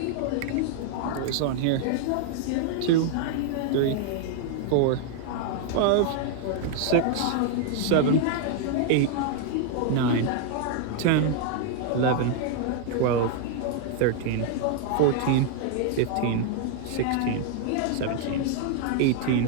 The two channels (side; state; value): both; different; correlation 0.00